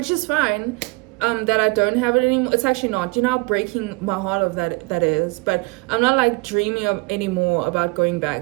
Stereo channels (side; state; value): left; quieter; 27.1 dB